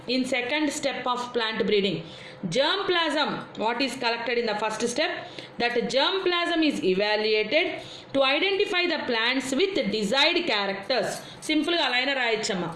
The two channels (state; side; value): identical; both; correlation 1.00